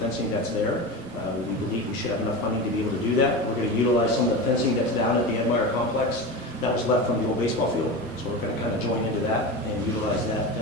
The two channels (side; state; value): both; normal; correlation 0.25